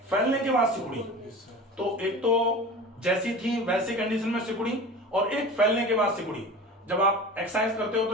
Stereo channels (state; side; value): normal; both; correlation 0.35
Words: फैलने के बाद सिकुड़ी। तो एक तो जैसी थी वैसी कंडीशन में सिकुड़ी, और एक फैलने के बाद सिकुड़ी। जब आप एक्सरसाइज करते हो